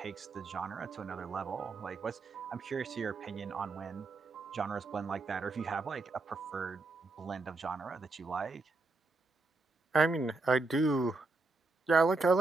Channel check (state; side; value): quieter; left; 3.5 dB